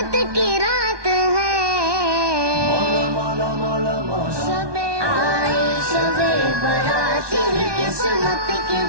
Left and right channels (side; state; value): left; late; 1.2 ms